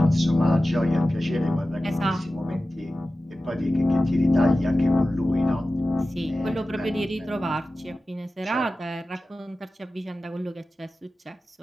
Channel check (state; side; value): normal; both; correlation 0.95